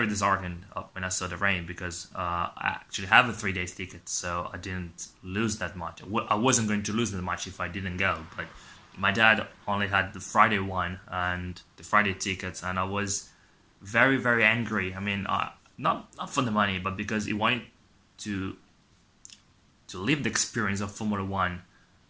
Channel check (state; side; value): identical; both; correlation 1.00